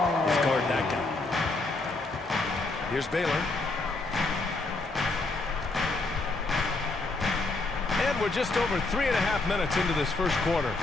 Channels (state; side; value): quieter; right; 3.3 dB